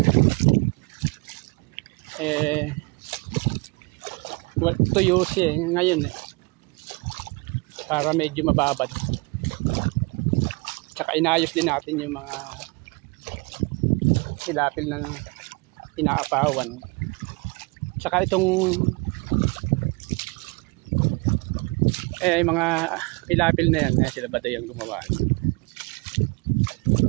Tuyo siya ngayon para medyo mababad. Tsaka inayos din natin yung mga hilapil na inaapawan. Tsaka itong mga hilapil na yan sila ba yung gumawa.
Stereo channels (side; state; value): left; quieter; 28.5 dB